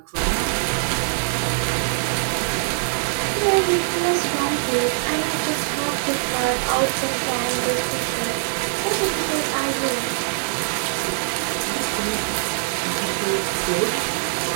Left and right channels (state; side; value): silent; left; digital silence